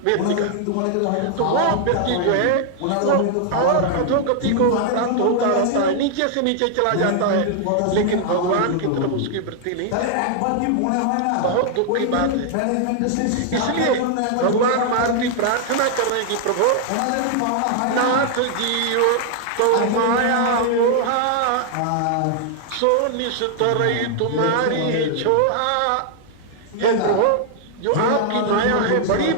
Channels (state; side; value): different; both; correlation 0.00